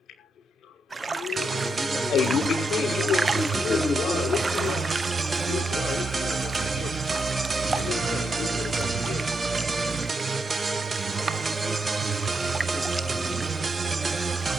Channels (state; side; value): normal; both; correlation 0.82